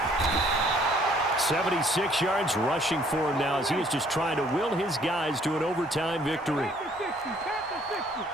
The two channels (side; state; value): both; normal; correlation 0.61